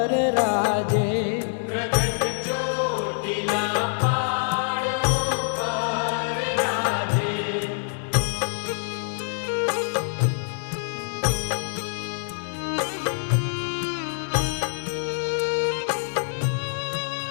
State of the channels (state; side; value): silent; right; 57 dB below the other